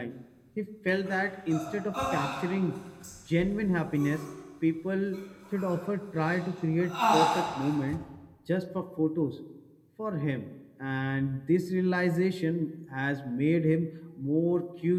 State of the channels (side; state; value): both; identical; correlation 1.00